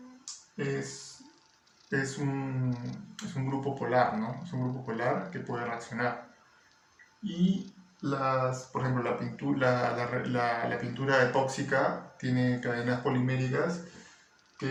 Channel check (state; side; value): identical; both; correlation 1.00